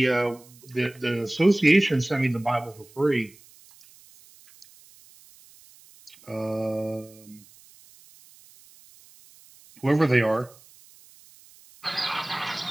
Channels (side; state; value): right; noise; hiss, 25 dB below the sound